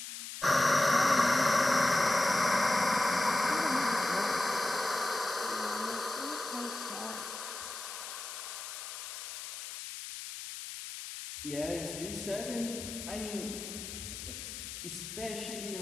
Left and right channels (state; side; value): noise; left; hiss, 9 dB below the sound